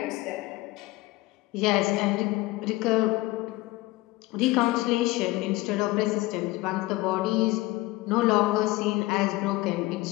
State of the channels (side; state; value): right; quieter; 19.6 dB